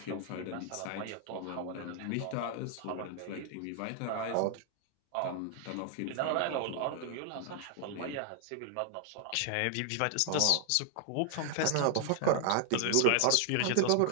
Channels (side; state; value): both; different; correlation 0.00